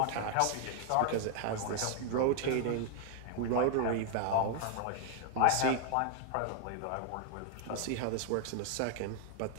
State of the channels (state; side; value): different; both; correlation 0.01